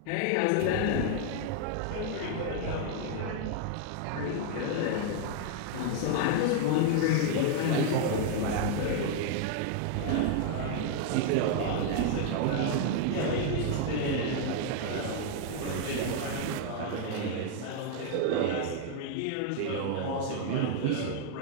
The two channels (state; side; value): different; both; correlation 0.00